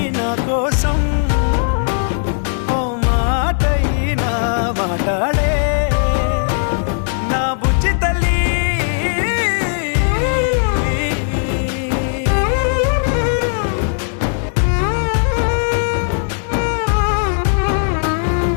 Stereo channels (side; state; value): right; silent; digital silence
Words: నా కోసం ఓ మాటైనా మాట్లాడే నా బుజ్జి తల్లి